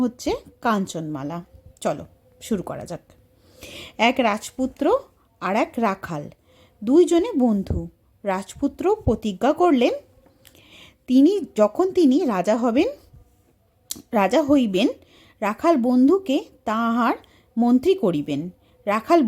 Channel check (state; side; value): identical; both; correlation 1.00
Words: হচ্ছে কাঞ্চনমালা। চলো শুরু করা যাক। এক রাজপুত্র আর এক রাখাল, দুইজনে বন্ধু। রাজপুত্র প্রতিজ্ঞা করলেন তিনি রাজা হইবেন, রাখাল বন্ধুকে তাহার মন্ত্রী করিবেন। রাখাল